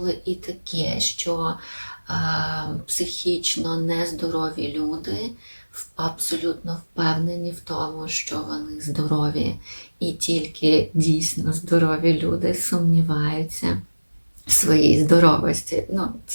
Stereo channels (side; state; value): both; inverted; correlation -1.00